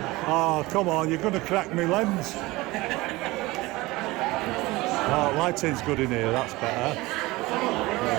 oh come on, you're going to crack me lens. Oh, lighting's good in here, that's better.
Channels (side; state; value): left; quieter; 20.8 dB